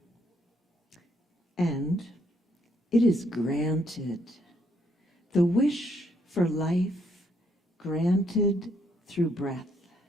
And it is granted. The wish for life granted through breath.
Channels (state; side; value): normal; both; correlation 0.72